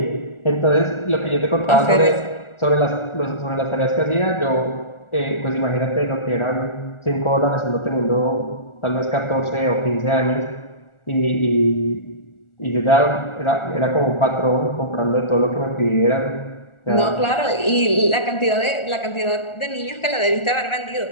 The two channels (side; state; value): right; late; 1.4 ms